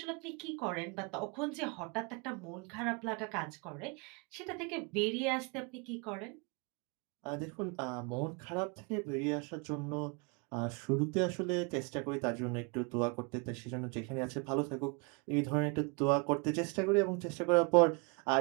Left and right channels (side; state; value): left; quieter; 32.1 dB